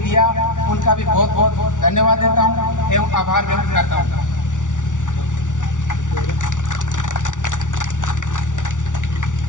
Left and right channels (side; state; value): right; late; 0.87 ms